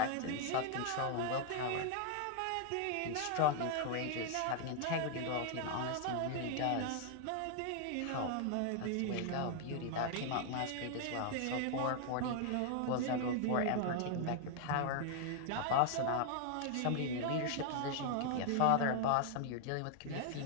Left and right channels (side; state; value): both; different; correlation 0.00